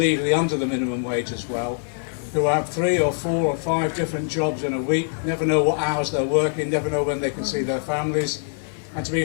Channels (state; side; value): silent; right; digital silence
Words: under the minimum wage as well, who have 3 or 4 or 5 different jobs in a week, never know what hours they're working, never know when they can see their families. And to